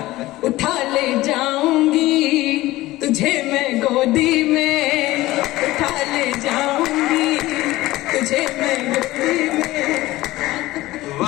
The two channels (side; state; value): right; quieter; 17.7 dB